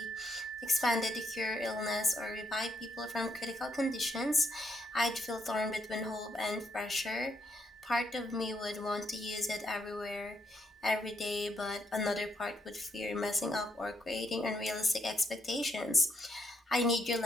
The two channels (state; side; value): normal; both; correlation 0.75